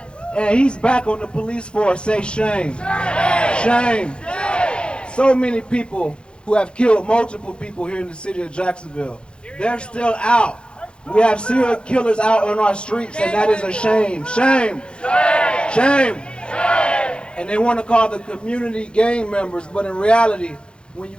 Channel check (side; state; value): right; late; 0.054 ms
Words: And he's back on the police force. Say shame. Shame. So many people who have killed multiple people here in the city of Jacksonville, they're still out. We have serial killers out on our streets, and that is a shame. Shame. Shame. And they want to call the community gang members, but in reality, when you